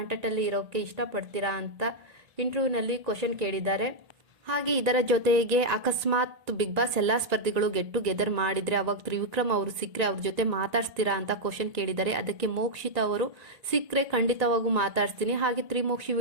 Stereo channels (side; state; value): left; late; 1.9 ms